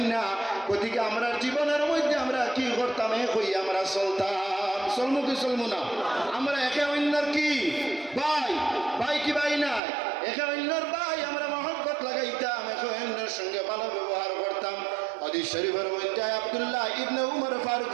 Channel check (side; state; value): left; drops out; at 9.8 s